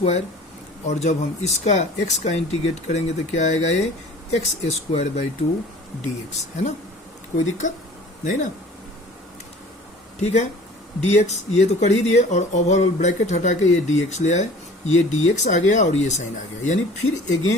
और जब हम इसका x का इंटीग्रेट करेंगे तो क्या आएगा ये x² dx, है ना, कोई दिक्कत नहीं ना, ठीक है। dx ये तो कर ही दिए, और ओवरऑल ब्रैकेट हटा के ये dx ले आए, ये dx आ गया और ये साइन आ गया, यानी फिर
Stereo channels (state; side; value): normal; both; correlation 0.46